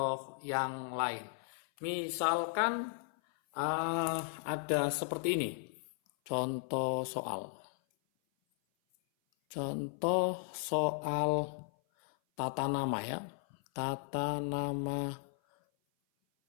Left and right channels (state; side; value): silent; right; 54 dB below the other